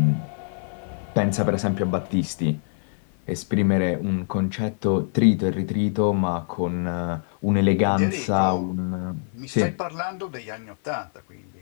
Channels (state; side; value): silent; right; 55 dB below the other